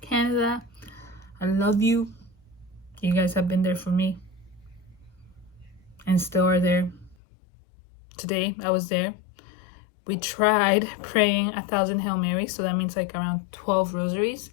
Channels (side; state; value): right; drops out; at 7.2 s